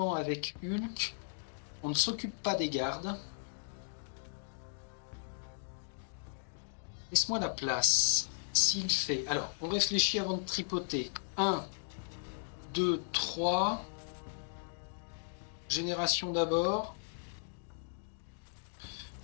avec Hulk. On ne s'occupe pas des gardes. Laisse-moi la place. S'il fait... Alors, on réfléchit avant de tripoter. 1, 2, 3. Génération d'abord.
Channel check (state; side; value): silent; right; digital silence